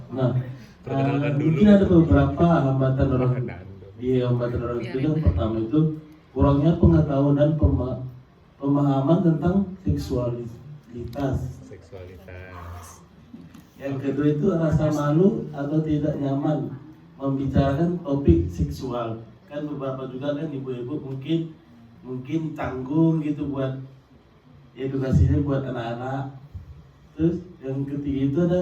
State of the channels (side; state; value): both; identical; correlation 1.00